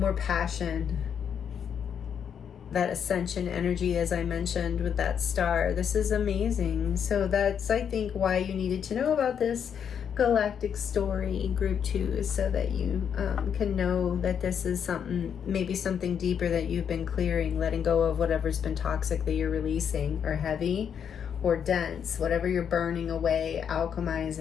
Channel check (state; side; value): quieter; right; 7.9 dB